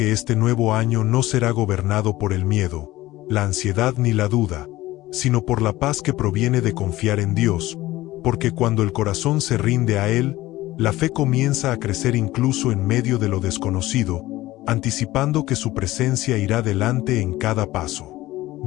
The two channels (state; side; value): quieter; right; 17.2 dB